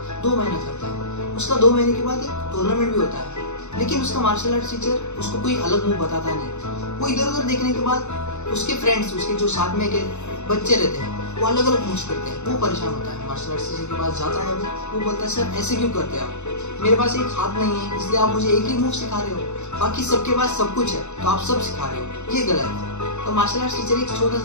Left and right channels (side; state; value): right; late; 0.82 ms